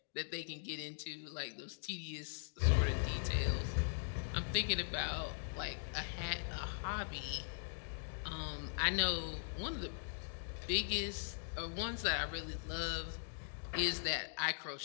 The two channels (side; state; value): right; silent; digital silence